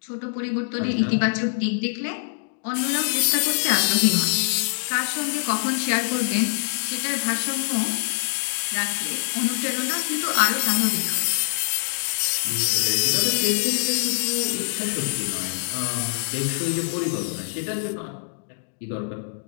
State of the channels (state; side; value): silent; right; digital silence